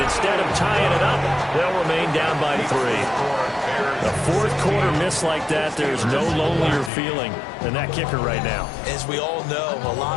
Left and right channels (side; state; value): right; drops out; at 6.9 s